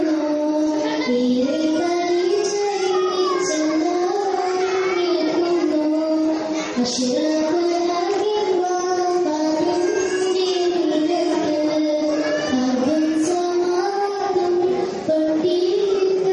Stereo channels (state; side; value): identical; both; correlation 1.00